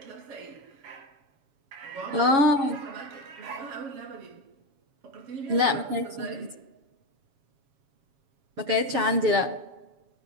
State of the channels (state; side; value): late; left; 7.3 ms